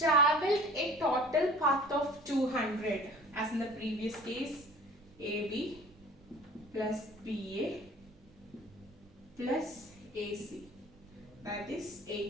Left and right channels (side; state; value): both; normal; correlation 0.46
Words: a total path of 200, as in the previous case, AB plus BA plus AC, that is